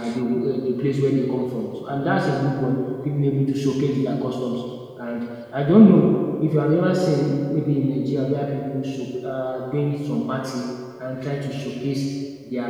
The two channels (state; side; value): identical; both; correlation 1.00